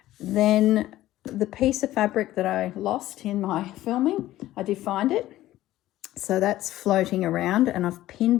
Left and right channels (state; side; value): quieter; right; 15.0 dB